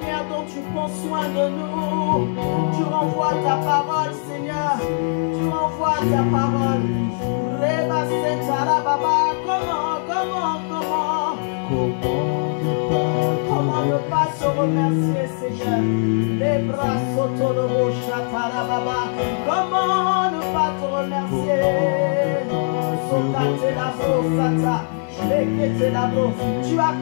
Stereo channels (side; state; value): right; silent; 61 dB below the other